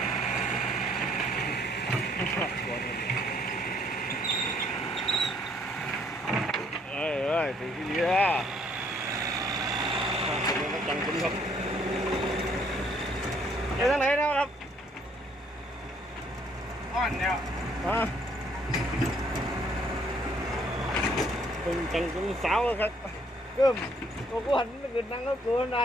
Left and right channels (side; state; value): both; normal; correlation 0.65